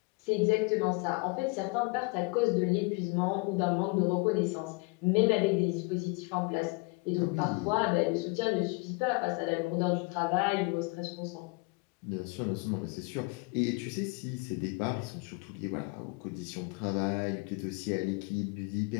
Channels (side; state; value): right; quieter; 28.7 dB